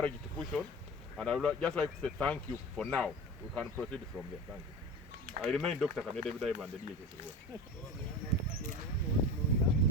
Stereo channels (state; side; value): normal; both; correlation 0.29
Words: to push on, and I would just like to say thank you for now. We can proceed from there. Thank you. I remain Dr. Kamede David and the DHS.